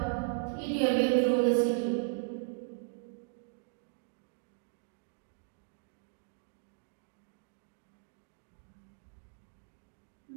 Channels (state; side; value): silent; left; digital silence